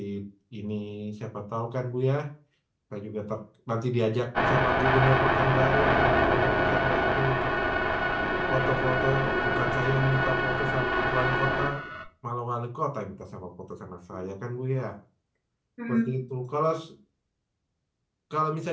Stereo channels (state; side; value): identical; both; correlation 1.00